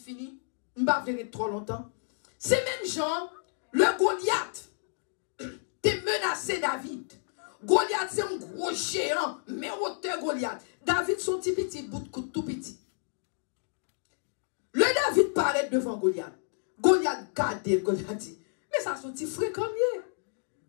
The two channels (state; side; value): silent; right; digital silence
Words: Je ne vais pas venir trop longtemps. C'est même genre, le Goliath t'es menacé David. Goliath c'est un gros géant, mais hauteur Goliath. David son petit bout de coude tout petit. Le David paraît devant Goliath. Goliath garde Goliath dit, mais ça son petit frère comme il.